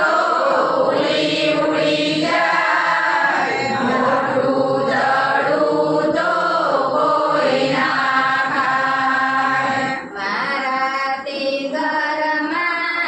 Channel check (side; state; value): both; identical; correlation 1.00